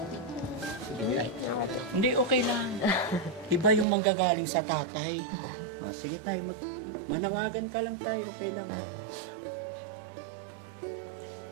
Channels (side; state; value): left; drops out; at 3.9 s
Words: Sige, tay. Hindi, okay lang. Iba yung manggagaling sa tatay. Sige, tay, manawagan ka lang, tay, okay lang.